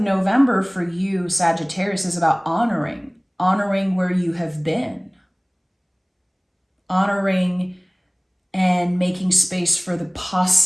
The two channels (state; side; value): identical; both; correlation 1.00